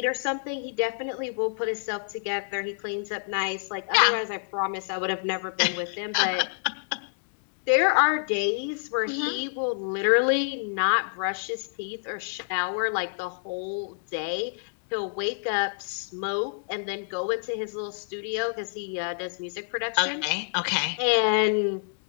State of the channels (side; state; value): right; silent; digital silence